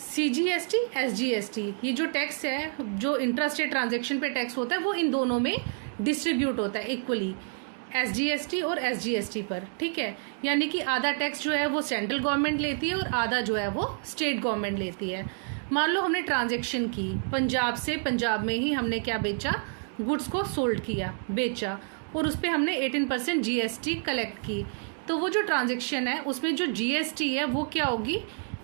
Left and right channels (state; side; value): silent; left; 59 dB below the other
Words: एसजीएसटी, ये जो टैक्स है, जो इंट्रास्टेट ट्रांजैक्शन पे टैक्स होता है, वो इन दोनों में डिस्ट्रीब्यूट होता है इक्वली, एसजीएसटी और एसजीएसटी पर। ठीक है, यानी कि आधा टैक्स जो है वो सेंट्रल गवर्नमेंट लेती है और आधा जो है वो स्टेट गवर्नमेंट लेती है। मान लो हमने ट्रांजैक्शन की पंजाब से, पंजाब में ही हमने क्या बेचा? गुड्स को सोल्ड किया, बेचा, और उस पर हमने 18% जीएसटी कलेक्ट की। तो वो जो ट्रांजैक्शन है उसमें जो जीएसटी है वो क्या होगी?